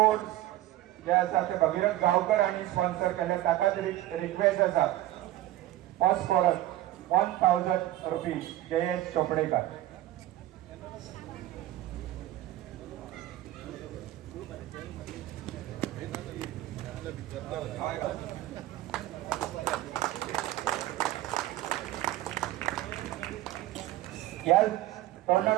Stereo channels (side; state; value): left; quieter; 14.8 dB